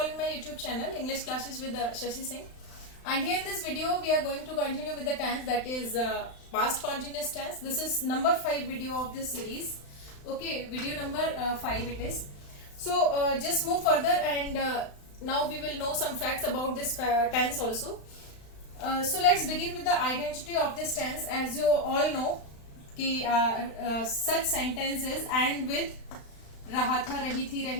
my YouTube channel English Classes with Shashi Singh. And here in this video we are going to continue with the tense, that is past continuous tense. This is number 5 video of this series. Okay, video number 5 it is. So just move further and now we will know some facts about this tense also. So let's begin with the identity of this tense. As you all know कि such sentences end with रहा था, रही थी,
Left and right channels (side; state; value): right; late; 35 ms